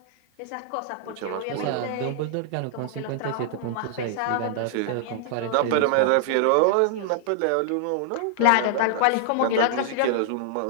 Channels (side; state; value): both; different; correlation -0.01